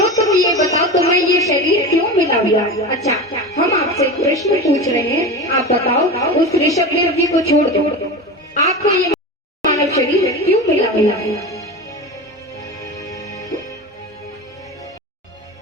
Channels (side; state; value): both; normal; correlation 0.27